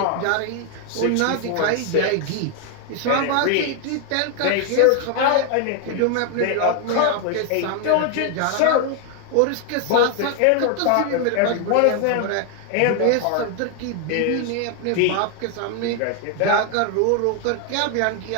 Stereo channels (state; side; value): different; both; correlation 0.00